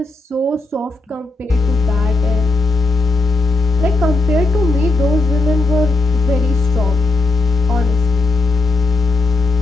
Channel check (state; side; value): quieter; right; 3.3 dB